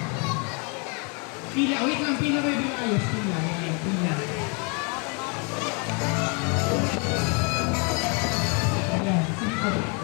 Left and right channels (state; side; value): quieter; right; 35.2 dB